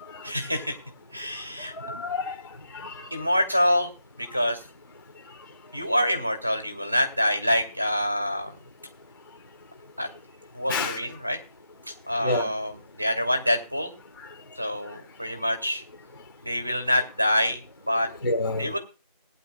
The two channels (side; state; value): both; inverted; correlation -0.84